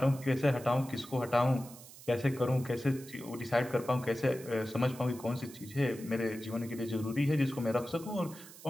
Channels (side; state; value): right; noise; hiss, 18 dB below the sound